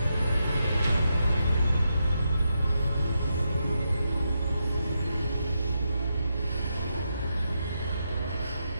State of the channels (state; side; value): inverted; both; correlation -0.84